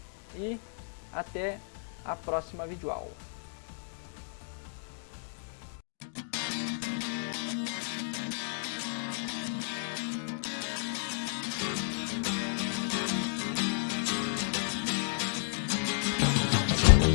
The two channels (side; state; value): right; silent; digital silence